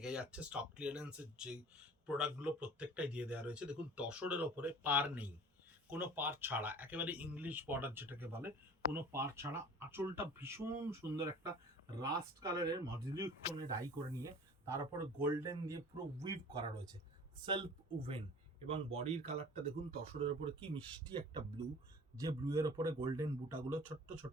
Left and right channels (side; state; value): both; normal; correlation 0.44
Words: যাচ্ছে। স্টক ক্লিয়ারেন্সের যে প্রোডাক্টগুলো প্রত্যেকটাই দিয়ে দেওয়া রয়েছে। দেখুন, তসরের ওপরে পার নেই, কোনো পার ছাড়া, একেবারে ইংলিশ বর্ডার যেটাকে বলে, কোনো পার ছাড়া। আঁচলটা ভীষণ সুন্দর একটা রাস্ট কালারের মডিউলিক টোনে ডাই করে নিয়ে তার উপরে গোল্ডেন দিয়ে পুরো উইভ করা রয়েছে, সেলফ উভেন। এবং বডির কালারটা দেখুন, তসরের ওপরে কি মিষ্টি একটা ব্লু, যে ব্লু এর ওপরে গোল্ডেন বুটাগুলো ছোট্ট